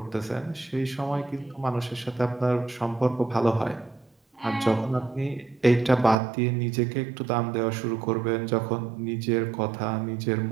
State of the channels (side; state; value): left; drops out; at 6.2 s